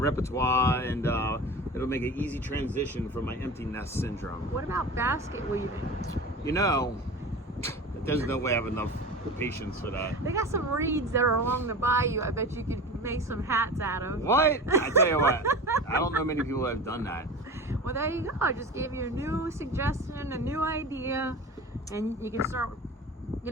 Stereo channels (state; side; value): normal; both; correlation 0.32